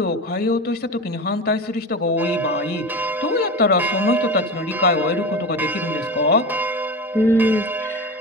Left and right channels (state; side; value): normal; both; correlation 0.27